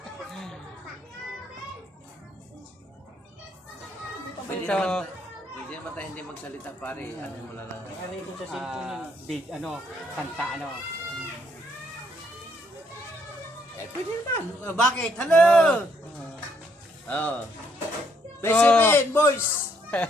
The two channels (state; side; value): normal; both; correlation 0.70